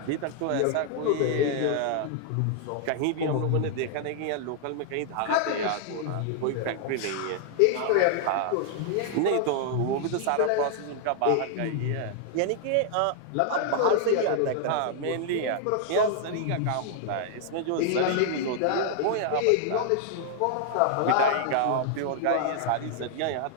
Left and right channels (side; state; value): both; different; correlation -0.01